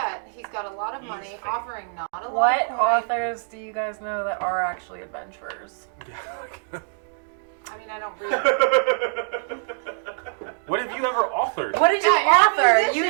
he's got a lot of He's money, fake. offering not a lot What of coin. authors do you guys know that are actually adventurers? I mean, I don't read. What have you ever authored? What did you Yeah, you're a author? You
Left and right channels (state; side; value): silent; left; digital silence